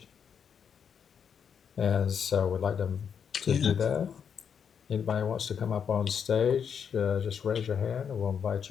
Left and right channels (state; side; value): quieter; right; 7.3 dB